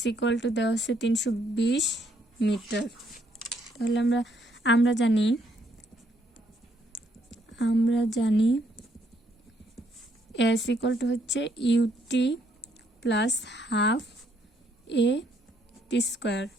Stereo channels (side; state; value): both; normal; correlation 0.71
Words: ইকুয়াল টু দেওয়া আছে 320 মিটার। তাহলে আমরা জানি s ইকুয়াল টু হচ্ছে ut plus half a t square.